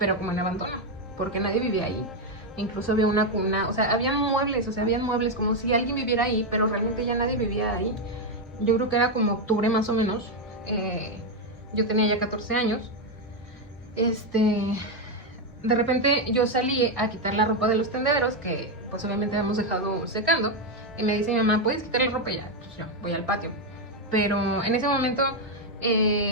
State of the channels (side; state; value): both; normal; correlation 0.05